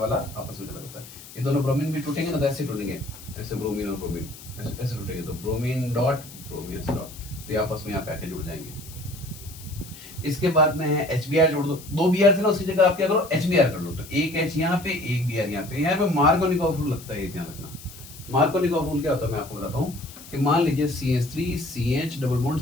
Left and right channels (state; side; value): noise; left; hiss, 17 dB below the sound